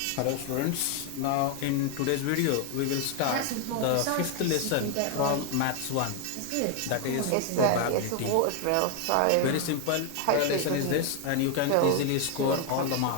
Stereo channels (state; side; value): different; both; correlation 0.01